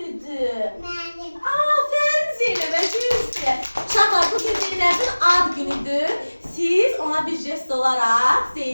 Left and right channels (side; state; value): both; inverted; correlation -1.00